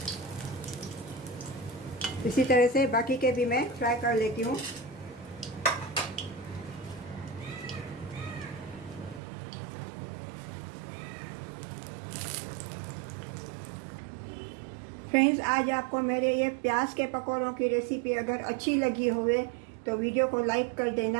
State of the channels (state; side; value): drops out; left; at 9.2 s